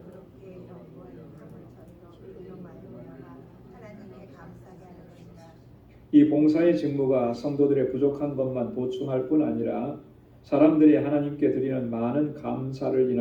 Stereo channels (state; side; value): identical; both; correlation 1.00